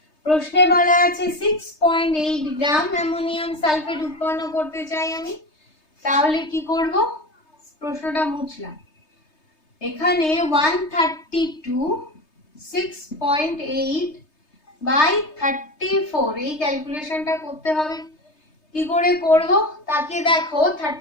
প্রশ্নে বলা আছে 6.8 গ্রাম অ্যামোনিয়াম সালফেট উৎপন্ন করতে চাই আমি। তাহলে কি করব? প্রশ্নটা মুছলাম। এখানে 132 6.8 বাই 34 এই ক্যালকুলেশনটা করতে হবে। কি করে করব? তাকে দেখো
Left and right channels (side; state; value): right; late; 3.3 ms